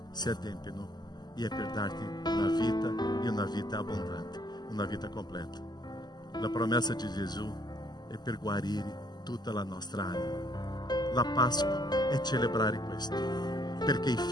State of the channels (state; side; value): late; right; 0.21 ms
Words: si adempiono e è per darti una vita e una vita abbondante, una vita completa. La promessa di Gesù è per guarire tutta la nostra anima. La Pasqua è celebrare questo, perché i